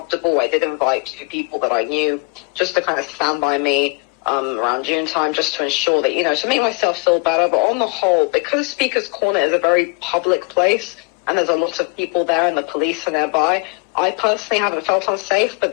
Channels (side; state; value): right; quieter; 32.7 dB